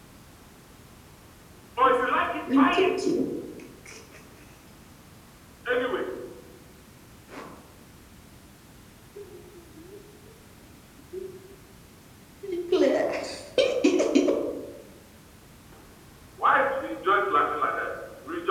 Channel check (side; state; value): both; identical; correlation 1.00